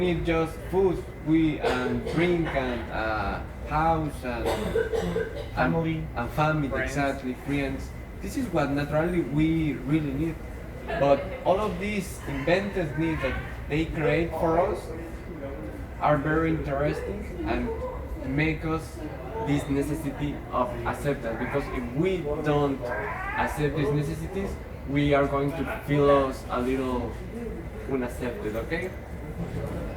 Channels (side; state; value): both; identical; correlation 1.00